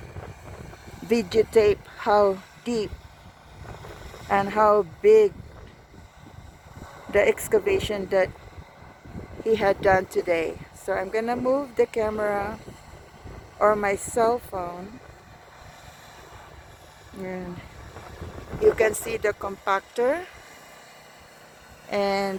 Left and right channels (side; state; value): both; identical; correlation 1.00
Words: videotape how deep and how big the excavation that he had done today. So I'm gonna move the camera or my cell phone, and you can see the compactor, and